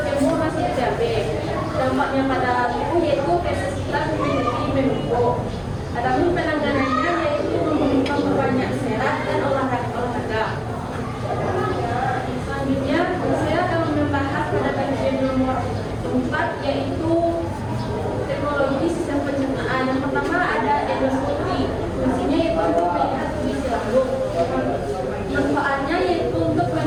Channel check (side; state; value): both; identical; correlation 1.00